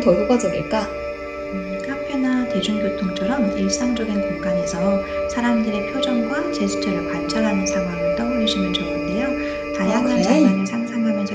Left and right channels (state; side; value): identical; both; correlation 1.00